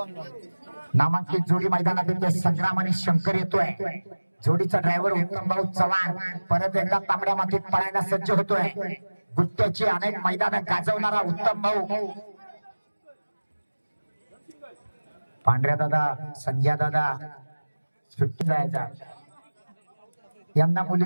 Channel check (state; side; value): inverted; both; correlation -1.00